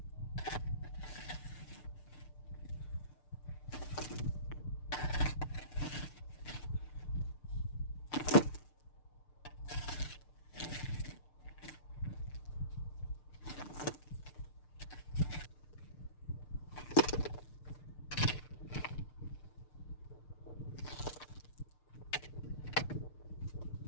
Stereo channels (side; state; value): right; late; 6.7 ms